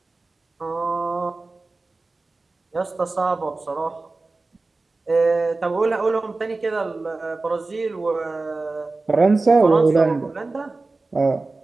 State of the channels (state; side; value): quieter; left; 3.5 dB